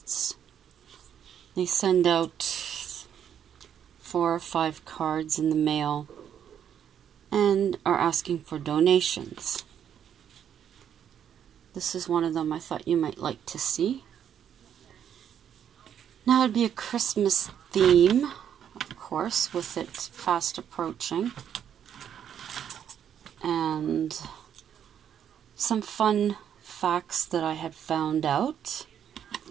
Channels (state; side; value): quieter; left; 9.1 dB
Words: They send out 4 or 5 cards in the mail and are asking for donations. This is one of them I thought you might like to see. Now it'd be a Christmas theme, of course, with it fast approaching. And some fun facts that I had found out